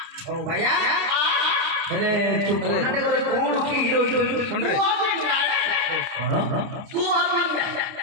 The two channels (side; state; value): left; late; 29 ms